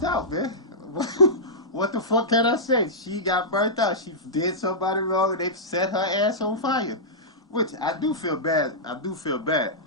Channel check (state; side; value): normal; both; correlation -0.13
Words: out, man. What the fuck can I say? She got burnt out. She did somebody wrong and they set her ass on fire. Which I do feel bad. I do feel bad.